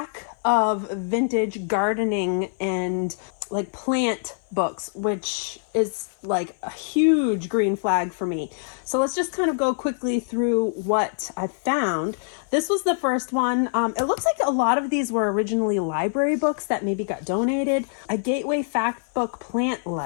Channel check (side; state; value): right; silent; 56 dB below the other